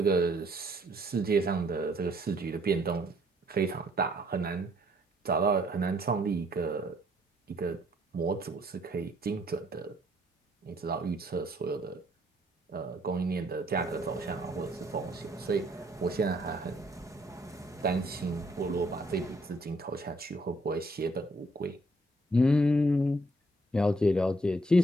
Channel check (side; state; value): both; normal; correlation 0.66